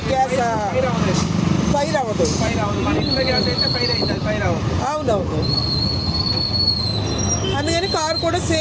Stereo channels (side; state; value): both; identical; correlation 1.00